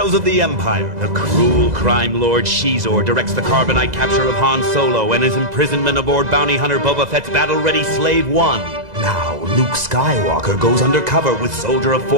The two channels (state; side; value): late; left; 2.0 ms